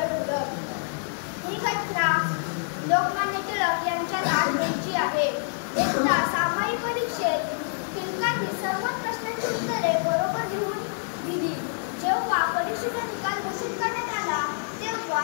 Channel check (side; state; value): right; silent; digital silence